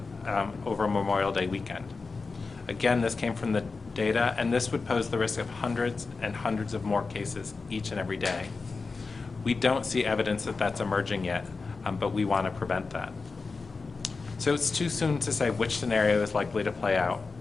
over Memorial Day weekend. Again, this came from the data, and this would pose the risk of hundreds and hundreds of more cases each and every day. We don't see evidence that that's emerging yet, but we want to prevent that. So it's too soon to say which scenario is likely to play out.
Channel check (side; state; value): right; quieter; 4.2 dB